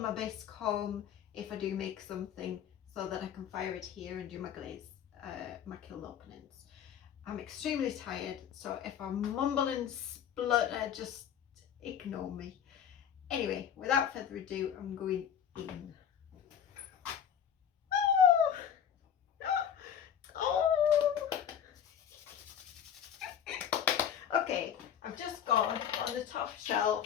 bisque home if I do make something, so that I can fire it here and do my glaze, my kiln openings. I'm extremely tired, so if I mumble and splutter, just ignore me. Anyway, without further ado, I'm going in. Okay, I've just gone on the top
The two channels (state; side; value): quieter; right; 8.9 dB